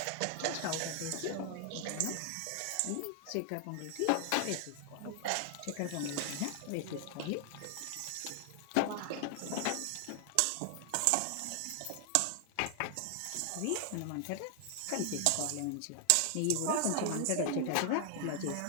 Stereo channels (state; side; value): different; both; correlation 0.00